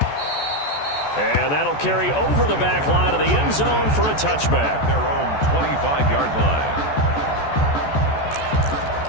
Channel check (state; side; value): late; right; 14 ms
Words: And that'll carry over the back line of the end zone for a touchback. Their own 25-yard line.